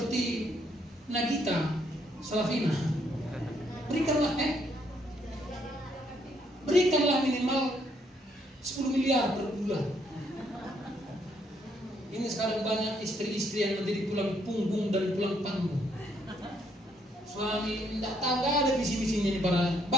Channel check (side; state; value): both; normal; correlation 0.71